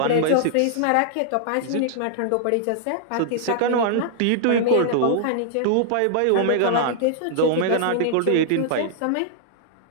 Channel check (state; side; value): different; both; correlation -0.01